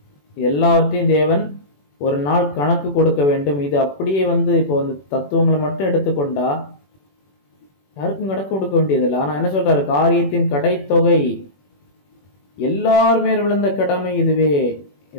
எல்லாவற்றையும் தேவன் ஒரு நாள் கணக்கு கொடுக்க வேண்டும். இது அப்படியே இப்போ தத்துவங்களை மட்டும் எடுத்துக்கொண்டா யாருக்கும் கணக்கு கொடுக்க வேண்டியதில்லை. ஆனா என்ன சொல்றாரு? காரியத்தின் கடைத்தொகை எல்லாருமே விழுந்த கடமை இதுவே.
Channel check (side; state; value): right; late; 21 ms